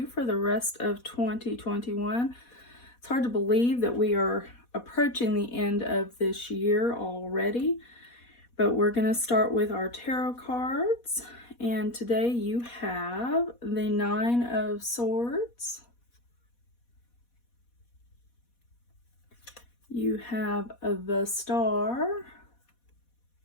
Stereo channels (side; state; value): right; late; 4.1 ms